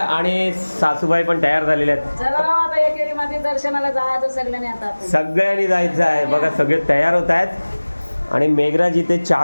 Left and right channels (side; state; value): both; inverted; correlation -1.00